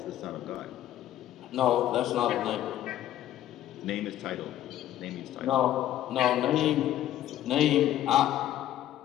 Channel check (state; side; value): quieter; right; 12.6 dB